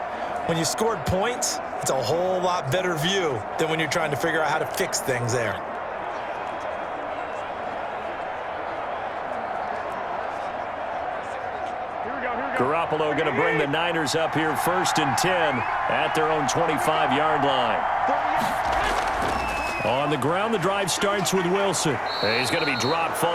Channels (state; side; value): identical; both; correlation 1.00